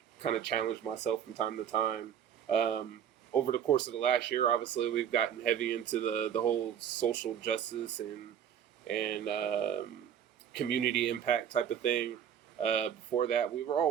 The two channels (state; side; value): quieter; left; 9.0 dB